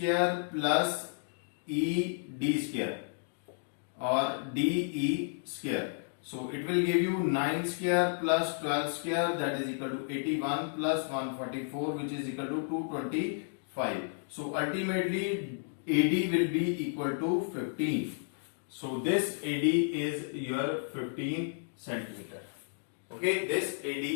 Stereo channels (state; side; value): silent; right; digital silence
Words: plus ED square or DE square. So it will give you 9 square plus 12 square, that is equal to 81 plus 144, which is equal to 225. So ultimately AD will be equal to 15. So this AD is your 15 centimeter. Okay, this AD